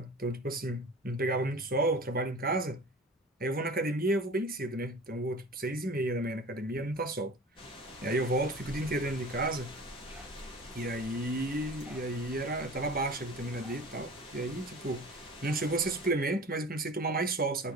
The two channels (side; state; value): both; normal; correlation 0.39